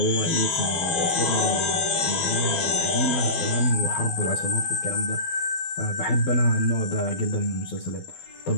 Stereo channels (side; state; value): right; late; 12 ms